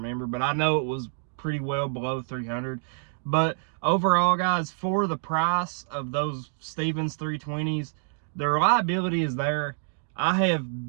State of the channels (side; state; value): left; silent; digital silence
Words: but I know it was pretty well below $300. But overall, guys, for the price of those Stevens 320s, the reliability is there. I